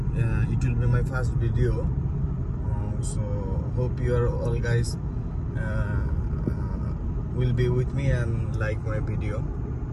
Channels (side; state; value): both; identical; correlation 1.00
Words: It will be my first video, so hope you are all guys will be with me and like my video.